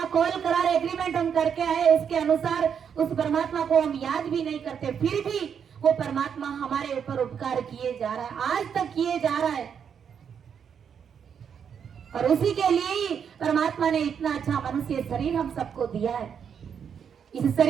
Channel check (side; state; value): left; quieter; 7.5 dB